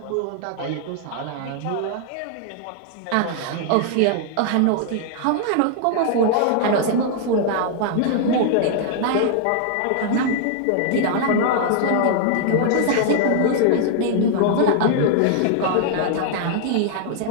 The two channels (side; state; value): both; different; correlation 0.00